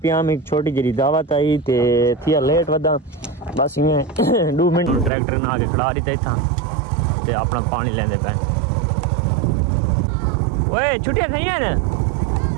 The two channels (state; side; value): drops out; left; at 5.1 s